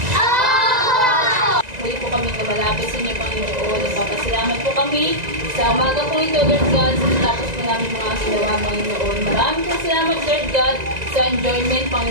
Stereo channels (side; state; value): left; late; 1.9 ms